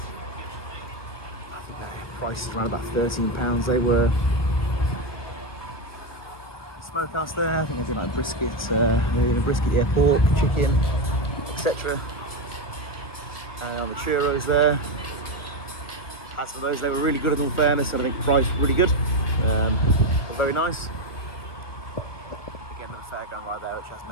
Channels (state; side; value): late; right; 1.4 ms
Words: think the price is around about £13 they were. Smokehouse there, I think they do like brisket, brisket, pork, chicken, etc. And on the churros there. As for those, they were really good in all fairness, and I think the price was really good. Very nice. Again, the fairground right there, which as